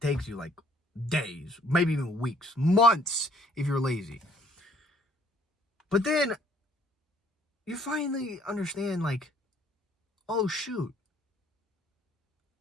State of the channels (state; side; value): normal; both; correlation 0.61